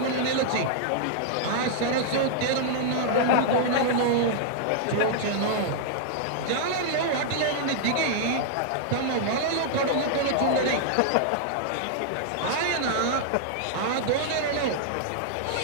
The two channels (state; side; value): different; both; correlation -0.01